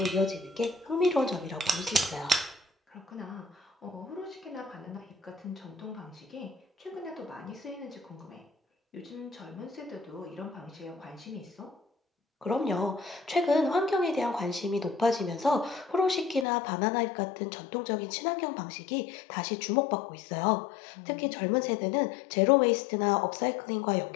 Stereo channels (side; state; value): right; drops out; at 16.4 s